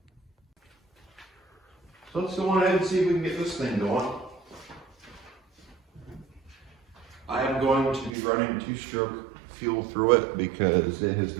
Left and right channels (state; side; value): drops out; left; at 8.2 s